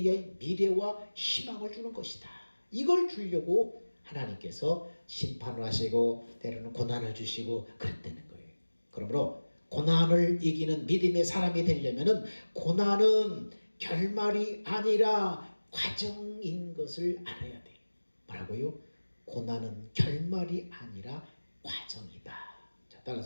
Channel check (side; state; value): both; inverted; correlation -1.00